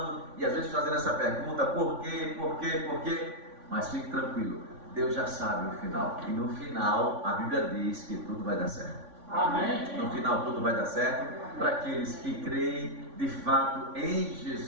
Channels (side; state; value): left; late; 3.5 ms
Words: e às vezes fazendo essa pergunta: por quê, por quê, por quê? Mas fique tranquilo, Deus já sabe o final. E no final, a Bíblia diz que tudo vai dar certo. Amém. No final tudo vai dar certo para aqueles que creem de fato em